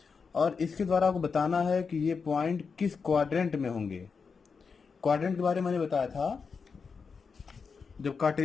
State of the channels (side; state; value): right; quieter; 5.4 dB